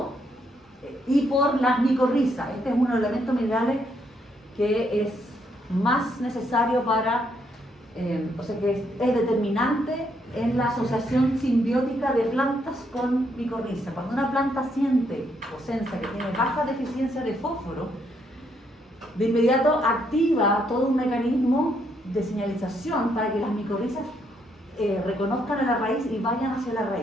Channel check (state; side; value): normal; both; correlation 0.74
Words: y por las micorrizas. Este es uno de los elementos minerales que es más necesario para, o sea que es determinante en la asociación simbiótica de plantas con micorriza. Cuando una planta siente o sensa que tiene baja deficiencia de fósforo, de inmediato activa todo un mecanismo de señalización para que las micorrizas reconozcan a la raíz y vayan hacia la